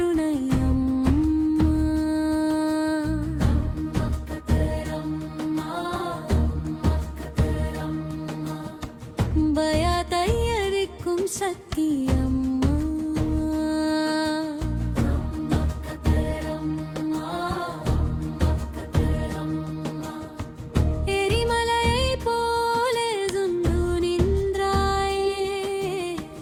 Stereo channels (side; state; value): both; identical; correlation 1.00